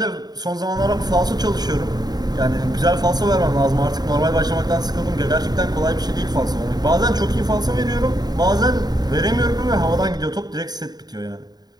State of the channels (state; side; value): late; left; 0.20 ms